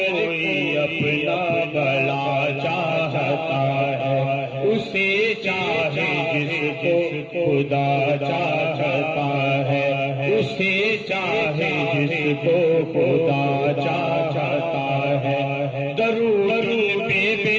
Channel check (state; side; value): identical; both; correlation 1.00